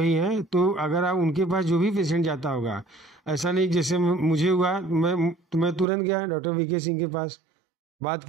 हैं। तो अगर आप उनके पास जो भी पेशेंट जाता होगा, ऐसा नहीं जैसे मुझे हुआ, मैं तुरंत गया डॉक्टर वीके सिंह के पास, बात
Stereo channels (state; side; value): drops out; left; at 5.9 s